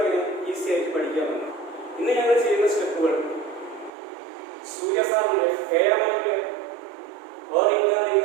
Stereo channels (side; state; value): left; drops out; at 3.9 s